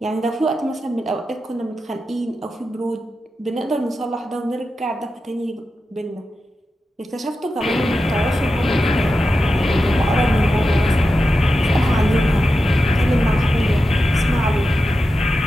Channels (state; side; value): normal; both; correlation 0.91